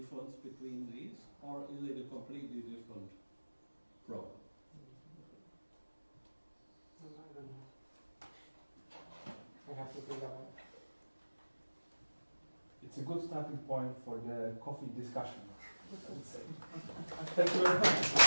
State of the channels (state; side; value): inverted; both; correlation -1.00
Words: between these, or is it a completely different problem? I don't know. I have to think about it. it's a good starting point for the coffee discussion. Thank you very